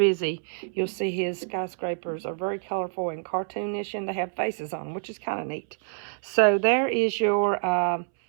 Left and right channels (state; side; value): silent; left; 60 dB below the other